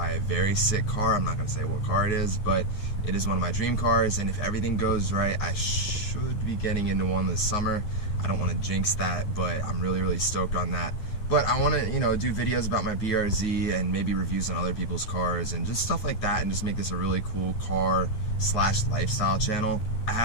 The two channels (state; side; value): late; right; 9.5 ms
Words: a very sick car. I'm not going to say what car it is, but it is one of my dream cars, and if everything goes right, I should be getting into one this summer. I don't want to jinx that, but I'm really stoked on that. But I want to, you know, do videos about my BRZ and maybe reviews on other people's cars and just stuff like that, and just make this a really cool car / lifestyle channel. I